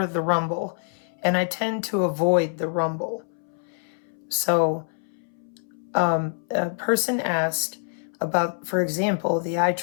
the Rumble, and I tend to avoid the Rumble. So a person asked about, for example, the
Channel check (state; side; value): silent; right; 61 dB below the other